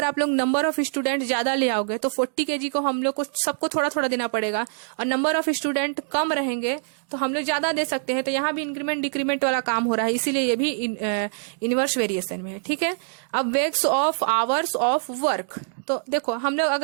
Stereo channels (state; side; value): silent; left; digital silence